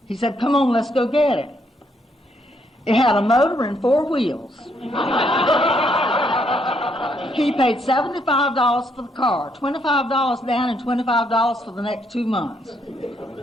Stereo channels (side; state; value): both; normal; correlation 0.73